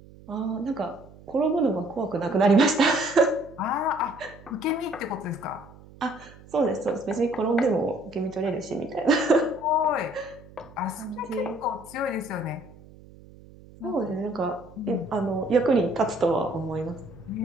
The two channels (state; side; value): noise; right; hum, 21 dB below the sound